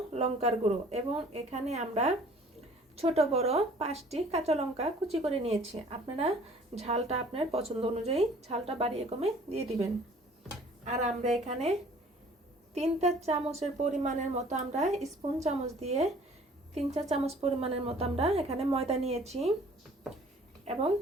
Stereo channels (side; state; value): both; normal; correlation 0.53